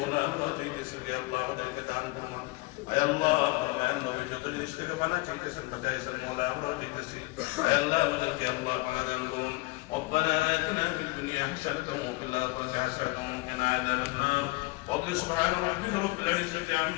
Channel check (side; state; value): right; quieter; 22.9 dB